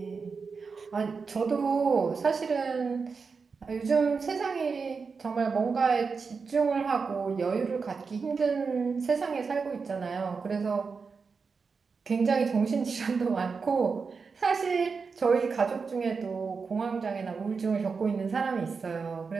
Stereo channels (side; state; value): left; quieter; 5.1 dB